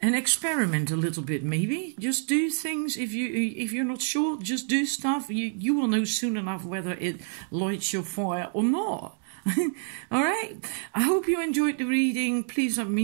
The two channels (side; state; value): left; silent; 60 dB below the other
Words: and experiment a little bit. Maybe just do things. If you're not sure, just do stuff. You will know soon enough whether it lights your fire or not. All right. I hope you enjoyed the reading. Please let me